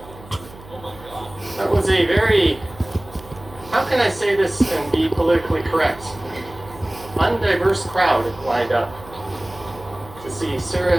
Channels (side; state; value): right; noise; hum, 19 dB below the sound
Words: That was a very, how can I say this and be politically correct? Undiverse crowd lined up to see